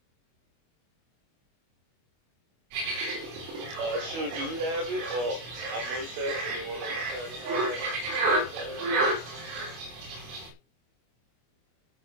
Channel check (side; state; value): left; late; 25 ms